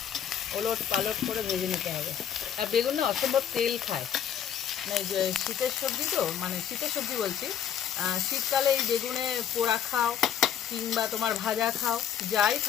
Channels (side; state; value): right; quieter; 9.2 dB